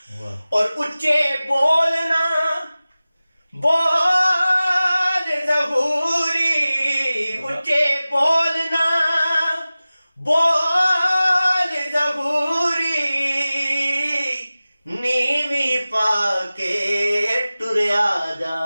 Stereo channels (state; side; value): inverted; both; correlation -0.97